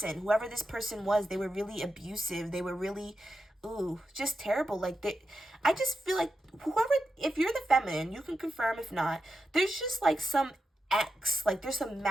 Whoever this person was, they were really abusive. They were really, just terrible. Like, I just feel like whoever, if you're the feminine, you can confirm if not, there's just like some ex, like there's some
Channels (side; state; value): both; normal; correlation 0.89